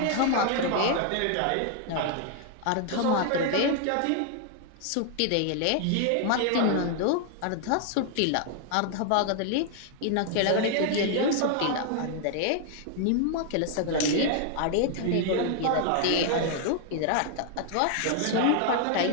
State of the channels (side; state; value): both; different; correlation 0.00